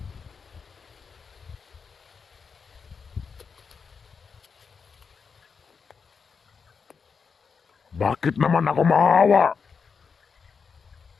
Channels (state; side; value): quieter; right; 5.7 dB